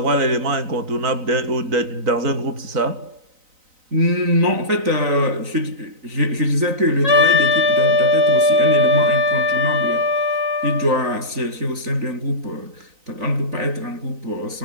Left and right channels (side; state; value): left; late; 3.9 ms